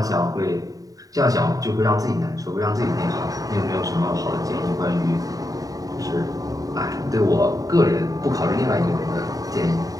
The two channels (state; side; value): late; left; 0.18 ms